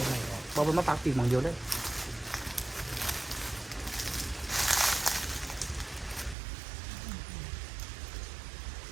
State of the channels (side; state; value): left; drops out; at 6.4 s